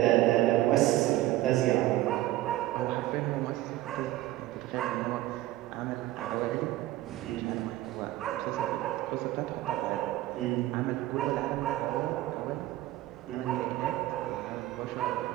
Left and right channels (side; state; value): left; quieter; 15.9 dB